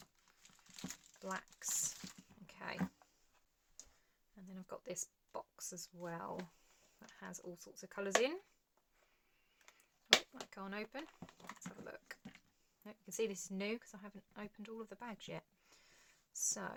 blacks. Okay. And then I've got this box as well that has all sorts of colours in. Oh, that can't open. Let's have a look. You can see this is new because I haven't opened all of the bags yet. So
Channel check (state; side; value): identical; both; correlation 1.00